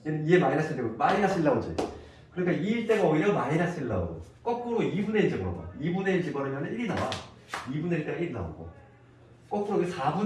얘는 2에 마이너스 되고 마이너스 1 나오지. 그러니까 2일 때가 오히려 마이너스 1 나오고 거꾸로 2분의 1 집어넣어. 2분의 1 집어넣으면 1이 나와. 2분의 1 때가 1이 나오고 거꾸로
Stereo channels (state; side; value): identical; both; correlation 1.00